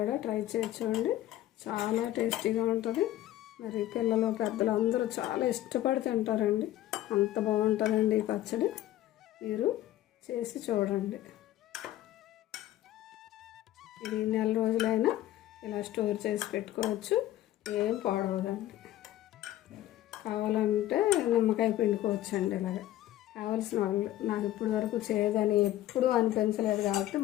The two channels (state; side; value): quieter; right; 14.0 dB